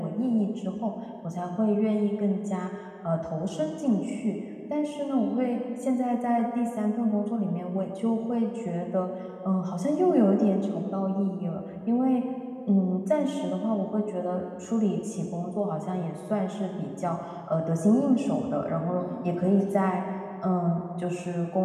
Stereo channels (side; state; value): both; identical; correlation 1.00